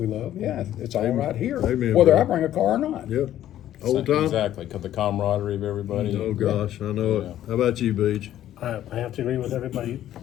love, it's all right here, Amen, whether brother. I bring a car or not. Yep. Old time. Exactly, 'cause the camaraderie of everybody. Oh gosh, I know it. How about you, Beach? I have to agree with everybody.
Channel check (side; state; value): right; quieter; 12.2 dB